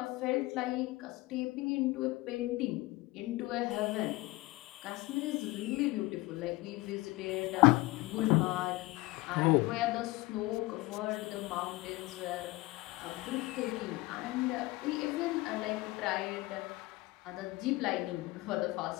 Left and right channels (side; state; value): right; quieter; 20.9 dB